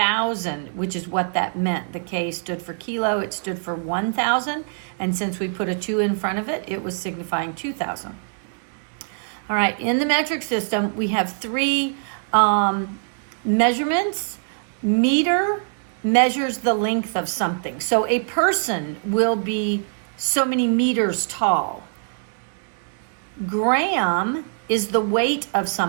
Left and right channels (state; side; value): silent; left; digital silence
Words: which is what that meant. The K stood for kilo, it stood for 1,000. And since we put a 2 in front of it, it was signifying 2,000. All right, in the metric system, we have three measurements. Meter measures the length of something. So a person will be so many meters tall. Gram is the weight of